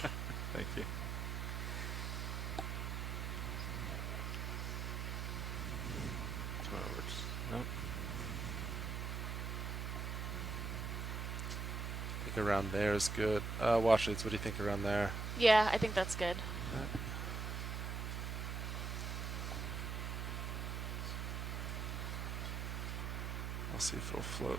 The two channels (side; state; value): right; noise; hum, 2 dB below the sound